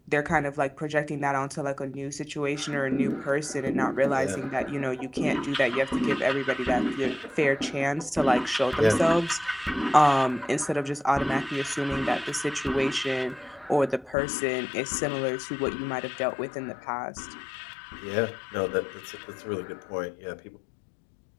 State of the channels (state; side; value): drops out; right; at 14.2 s